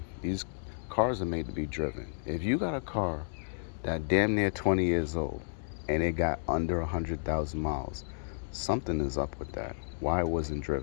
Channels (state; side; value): silent; right; digital silence